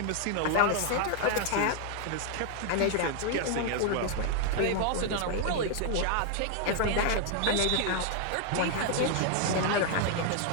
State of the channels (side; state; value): both; different; correlation 0.00